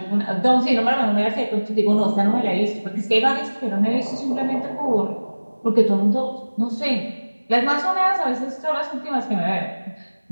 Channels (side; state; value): both; inverted; correlation -1.00